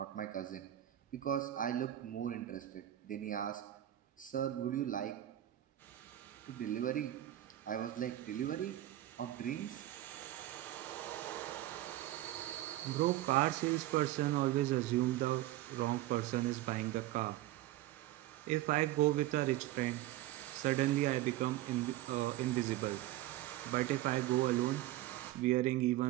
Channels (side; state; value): left; quieter; 14.7 dB